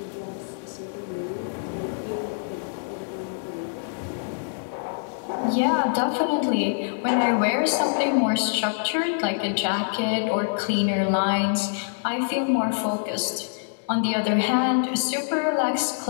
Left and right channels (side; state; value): right; silent; digital silence